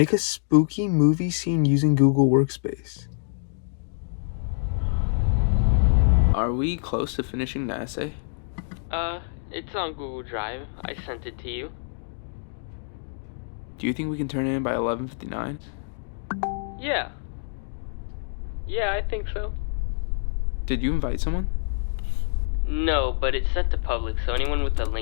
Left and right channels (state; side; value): silent; right; digital silence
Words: a spooky movie scene using Google Workspace. Are we close to finishing the essay? It's on Google Drive. I sent it to you. Do you think we can turn it in by 11:59? Yeah. Yeah, I think so. Did you invite someone? No, but it's set to public, so anyone with the